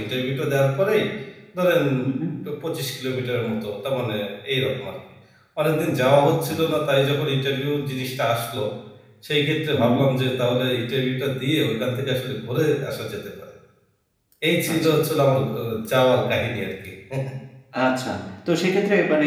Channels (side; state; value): both; identical; correlation 1.00